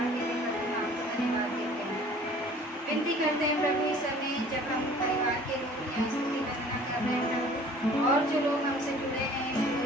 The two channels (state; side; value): normal; both; correlation 0.50